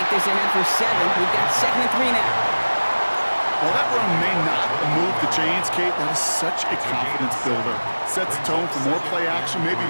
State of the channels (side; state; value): both; inverted; correlation -1.00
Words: this ahead for 7. We've got 2nd and 3 now. Well, that run may not move the chains, Kate. That is such a confidence builder. Sets the tone for more play action, maybe